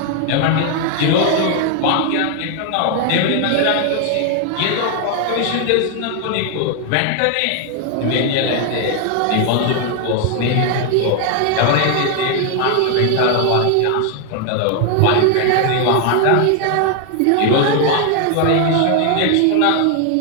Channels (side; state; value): both; different; correlation 0.00